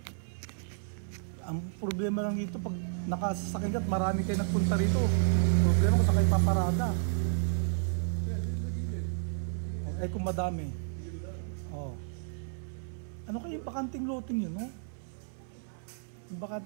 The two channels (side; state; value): left; silent; 57 dB below the other